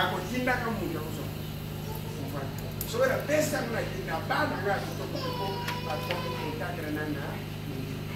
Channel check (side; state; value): both; identical; correlation 1.00